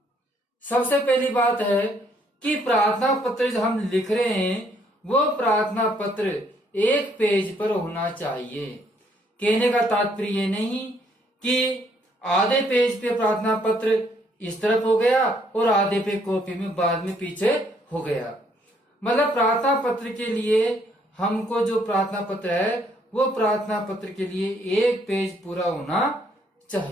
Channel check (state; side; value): normal; both; correlation 0.67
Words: सबसे पहली बात है कि प्रार्थना पत्र जो हम लिख रहे हैं वो प्रार्थना पत्र एक पेज पर होना चाहिए। कहने का तात्पर्य ये नहीं कि आधे पेज पे प्रार्थना पत्र इस तरफ हो गया और आधे पे कॉपी में बाद में पीछे हो गया। मतलब प्रार्थना पत्र के लिए हमको जो प्रार्थना पत्र है वो प्रार्थना पत्र के लिए एक पेज पूरा होना